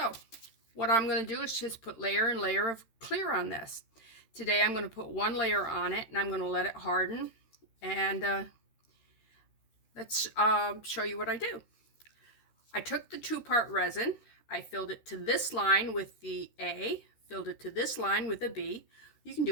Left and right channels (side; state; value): right; late; 13 ms